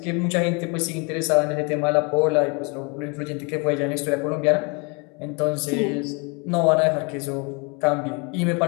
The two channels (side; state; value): right; quieter; 31.9 dB